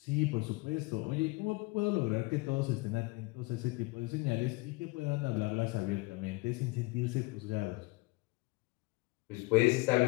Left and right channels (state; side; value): quieter; right; 25.3 dB